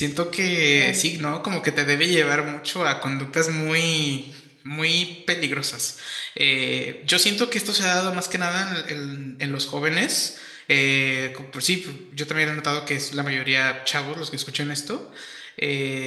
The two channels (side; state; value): both; identical; correlation 1.00